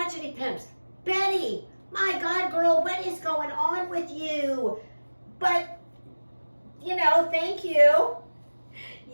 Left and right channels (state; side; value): inverted; both; correlation -1.00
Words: pimps. Betty, my God, girl, what is going on with you? But thank you.